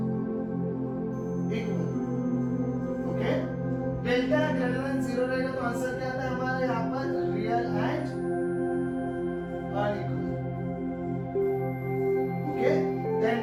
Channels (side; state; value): both; identical; correlation 1.00